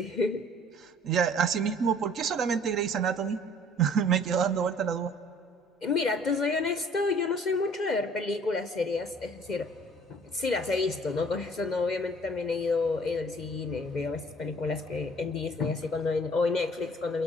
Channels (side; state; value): both; normal; correlation 0.54